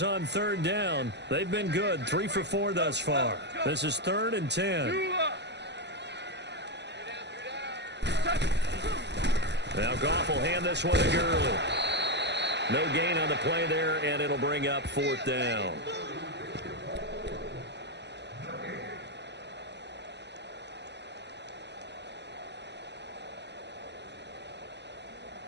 on third down. They've been good, 3 for 4 thus far. This is 3rd and 10. Now Goff will hand this one to Gurley. No gain on the play there, and it'll bring up 4th down.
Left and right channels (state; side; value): late; left; 0.50 ms